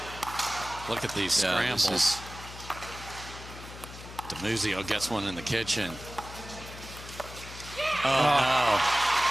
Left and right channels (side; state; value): left; noise; hum, 14 dB below the sound